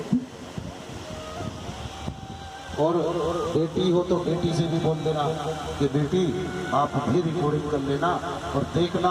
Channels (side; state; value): both; identical; correlation 1.00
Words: और बेटी हो तो बेटी से भी बोल देना कि बेटी आप भी रिकॉर्डिंग कर लेना और